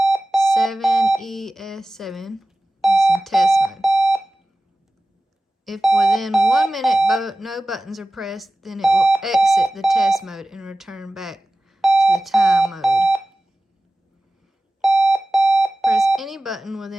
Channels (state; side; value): normal; both; correlation 0.96